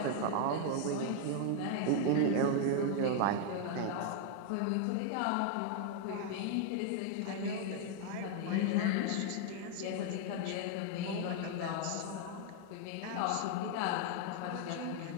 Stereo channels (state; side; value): different; both; correlation 0.00